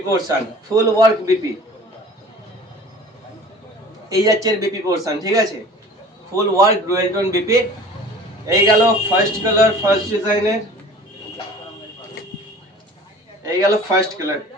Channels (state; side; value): normal; both; correlation 0.44